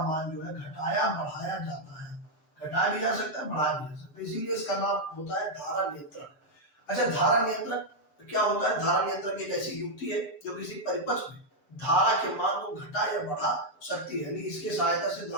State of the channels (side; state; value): right; late; 6.8 ms